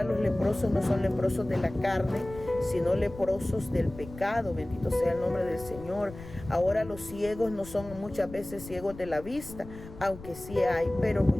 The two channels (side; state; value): left; noise; rumble, 15 dB below the sound